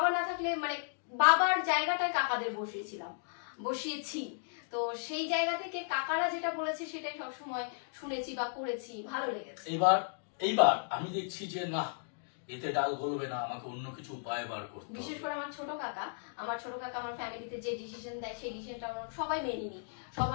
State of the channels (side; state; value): right; silent; digital silence